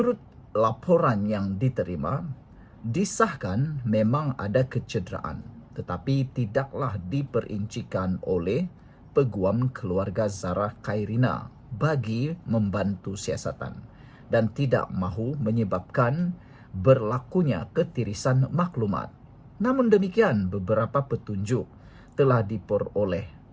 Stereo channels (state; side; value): identical; both; correlation 1.00